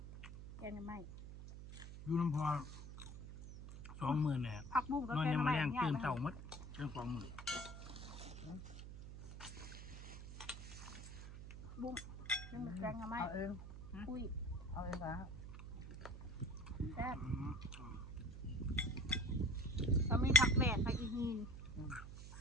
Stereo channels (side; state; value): right; noise; hum, 11 dB below the sound